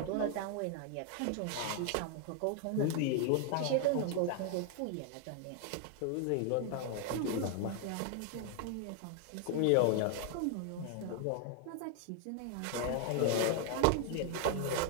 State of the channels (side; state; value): both; different; correlation 0.00